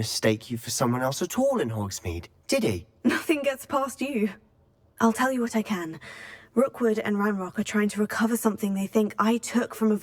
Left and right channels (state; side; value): identical; both; correlation 1.00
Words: you for someone else at all in Hogsmeade, did he? Nothing gets past you. I'll tell you what I can. Rookwood and Ranrock are trying to recover something they think I took from a